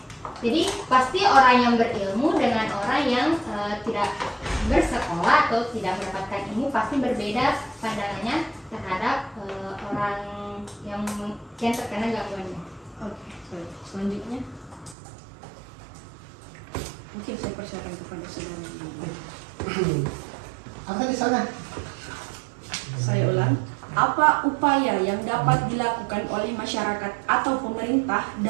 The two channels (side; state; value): left; drops out; at 15.0 s